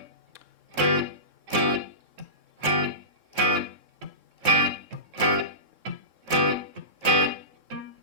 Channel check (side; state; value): left; late; 3.7 ms